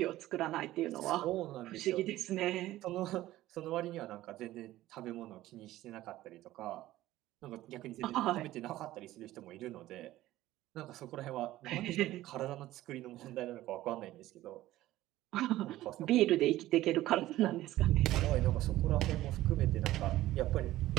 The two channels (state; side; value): quieter; left; 15.5 dB